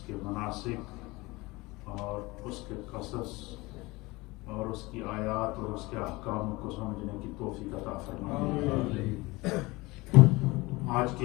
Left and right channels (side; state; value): right; quieter; 22.5 dB